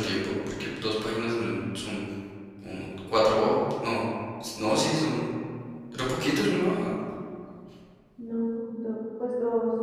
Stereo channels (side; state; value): both; identical; correlation 1.00